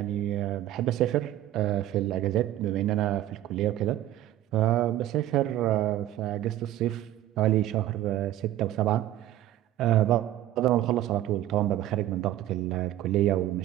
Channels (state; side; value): quieter; left; 13.4 dB